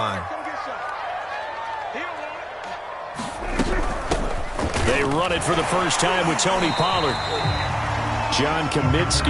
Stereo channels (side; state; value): both; identical; correlation 1.00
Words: They run it for the first time with Tony Pollard. John